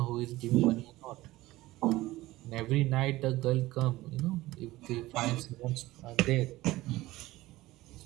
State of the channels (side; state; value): left; quieter; 17.9 dB